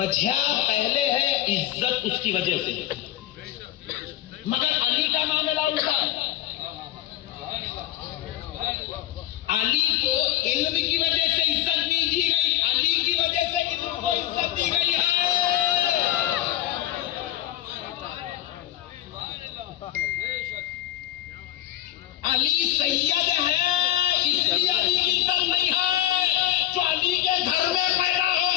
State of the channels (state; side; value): quieter; right; 13.3 dB